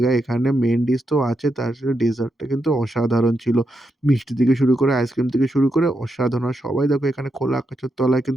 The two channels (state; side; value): normal; both; correlation 0.83